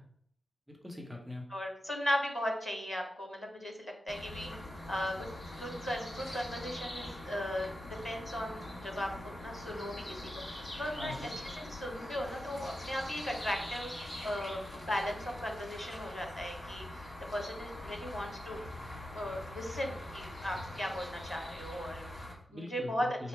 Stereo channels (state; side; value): normal; both; correlation 0.90